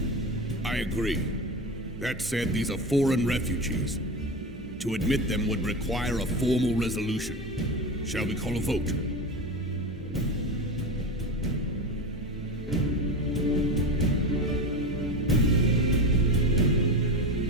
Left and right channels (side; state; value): both; normal; correlation 0.23